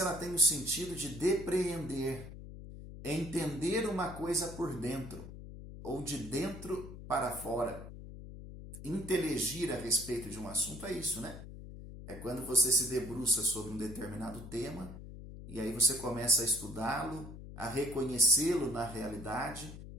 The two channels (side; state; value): left; noise; hum, 12 dB below the sound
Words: ela tem o sentido de depreender, entender uma coisa por dentro, ou de dentro para fora. Inteligir a respeito de um assunto é isso, né? É quando você se debruça sobre um determinado tema e aí você começa a estudá-lo, a reconhecê-lo na realidade